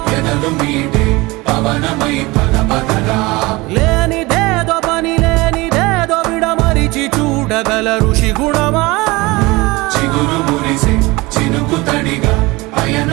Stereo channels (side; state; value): left; quieter; 22.5 dB